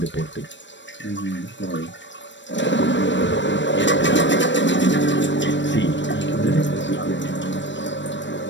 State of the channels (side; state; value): right; late; 0.53 ms